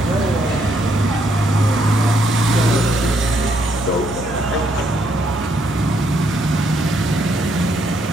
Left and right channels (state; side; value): normal; both; correlation 0.73